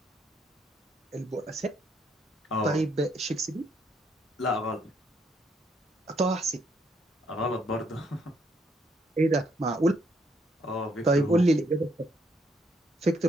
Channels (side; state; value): both; normal; correlation 0.72